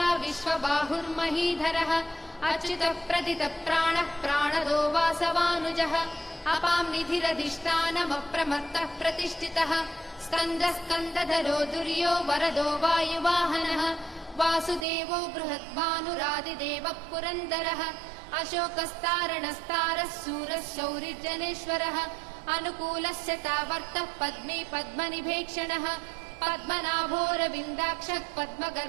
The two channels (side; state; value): left; drops out; at 14.9 s